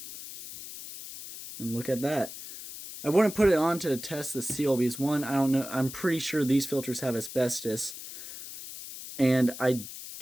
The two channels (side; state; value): left; noise; hiss, 11 dB below the sound